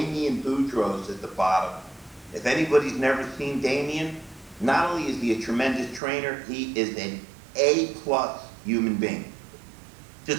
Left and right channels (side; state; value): left; drops out; at 6.0 s